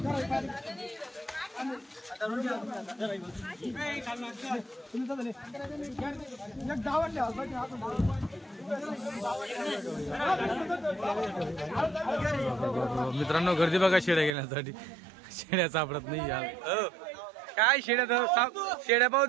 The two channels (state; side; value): drops out; left; at 14.3 s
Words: मित्रांनो, गर्दी बघा शेड्या घेण्यासाठी. शेड्या सापडत नाही यार. काय शेड्या शेड्या पाहू